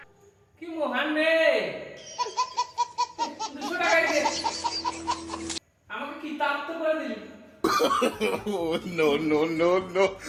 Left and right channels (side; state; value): both; identical; correlation 1.00